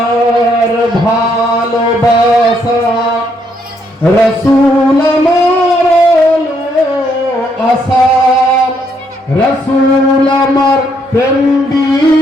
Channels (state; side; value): normal; both; correlation 0.73